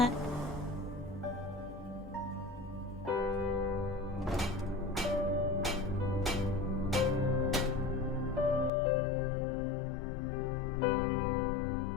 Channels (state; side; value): drops out; right; at 8.7 s